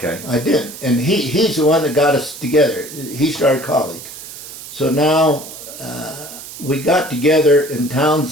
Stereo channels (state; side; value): noise; right; hiss, 13 dB below the sound